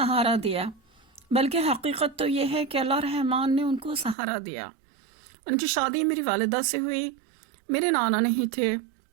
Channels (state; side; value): drops out; left; at 4.2 s